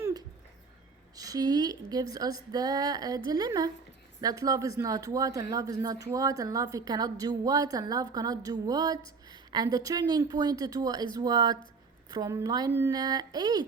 she gives us the dilemma that love is not what, and love is not what, and love cannot do what, and love cannot do what. And the turning point is what? From line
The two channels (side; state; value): left; quieter; 4.8 dB